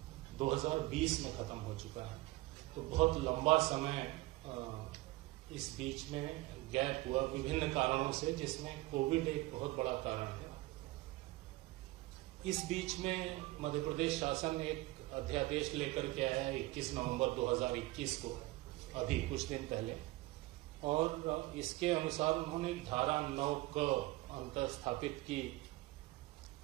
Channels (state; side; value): quieter; left; 19.8 dB